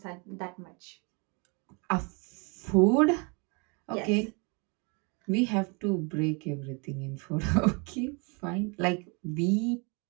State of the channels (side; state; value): left; quieter; 32.0 dB